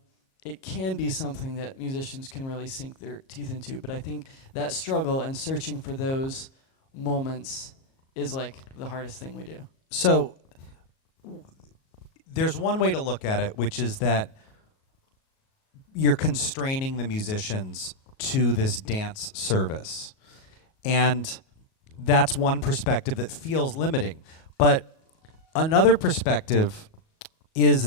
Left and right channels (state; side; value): late; right; 37 ms